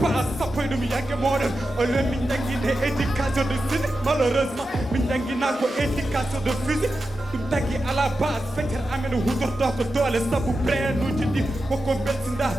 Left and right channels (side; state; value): both; normal; correlation 0.90